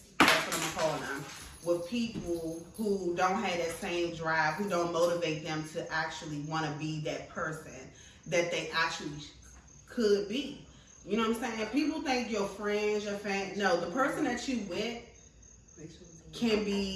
That's what I'm calling them. With people who don't have that same drive, who don't motivate them to actually want to be that person that they actually could be. You know what I'm saying? People think your friends, your family. No, the person that you with can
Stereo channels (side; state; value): both; identical; correlation 1.00